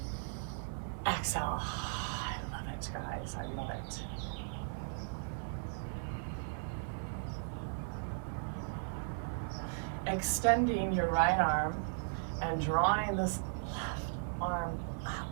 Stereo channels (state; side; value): silent; left; 53 dB below the other